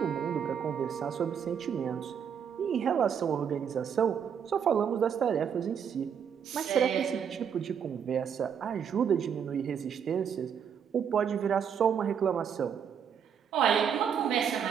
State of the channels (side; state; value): left; quieter; 7.7 dB